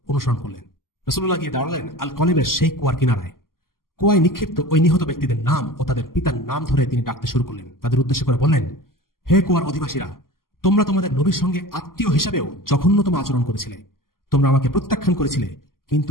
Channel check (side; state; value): right; late; 0.92 ms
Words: অনুসরণ করলেন। রাসূলুল্লাহ গিয়ে দাঁড়ালেন আল কলিবের সেই কুয়ার কিনারায়। কুয়ায় নিক্ষিপ্ত ওই নিহত ব্যক্তিদের নাম ও তাদের পিতার নাম ধরে তিনি ডাকতে শুরু করলেন। তাদের উদ্দেশ্য করে বললেন, হে কুয়ার অধিবাসীরা, তোমরা তোমাদের নবীর সঙ্গে আত্মীয় হিসাবেও জঘন্যতম আচরণ করেছিলে। তোমরা আমাকে প্রত্যাখ্যান করেছিলে, কিন্তু